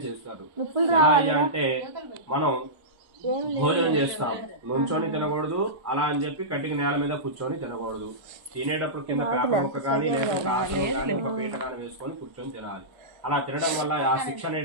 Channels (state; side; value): late; left; 1.3 ms